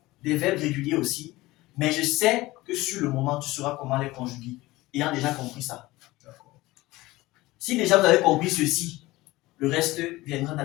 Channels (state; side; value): quieter; right; 19.3 dB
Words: des verbes réguliers aussi. Mais je sais que sur le moment, tu sauras comment les conjuguer, ayant déjà compris ça. D'accord. Si déjà vous avez compris ceci, le reste viendra